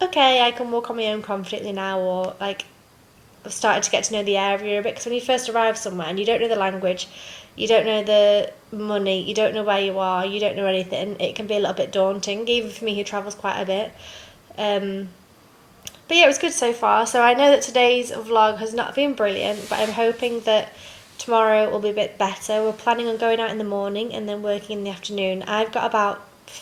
okay, I can walk on my own confidently now, or like I've started to get to know the area a bit. Because when you first arrive somewhere and you don't know the language, you don't know the money, you don't know where you are, you don't know anything, it can be a little bit daunting, even for me who travels quite a bit. But yeah, it was good so far. So I know that today's vlog has not been brilliant, but I'm hoping that tomorrow will be a bit better. We're planning on going out in the morning and then working in the afternoon. I've got about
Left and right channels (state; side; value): identical; both; correlation 1.00